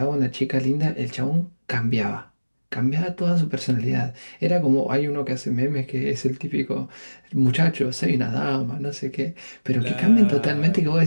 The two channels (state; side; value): inverted; both; correlation -1.00